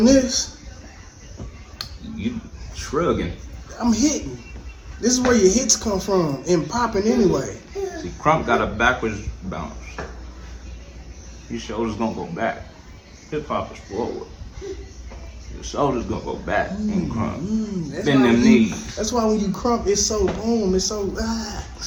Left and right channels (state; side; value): identical; both; correlation 1.00